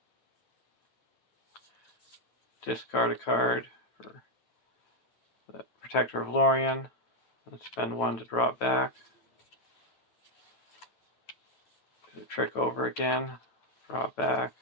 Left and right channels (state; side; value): late; right; 9.0 ms